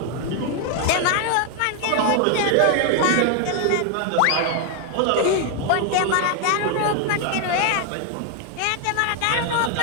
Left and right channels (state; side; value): different; both; correlation 0.01